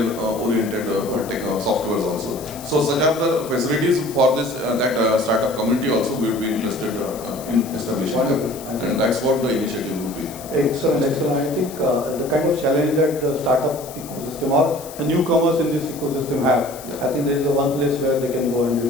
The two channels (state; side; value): noise; left; hiss, 16 dB below the sound